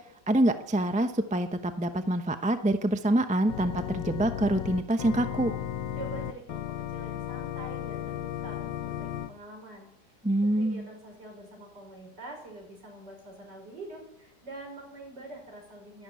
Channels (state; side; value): normal; both; correlation 0.67